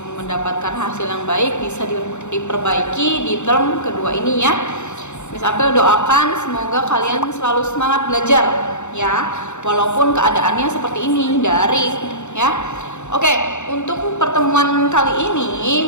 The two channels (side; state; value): right; late; 0.83 ms